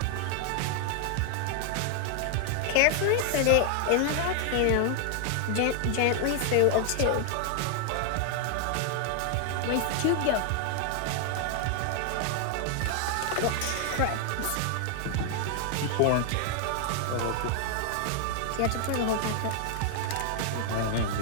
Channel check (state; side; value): different; both; correlation 0.00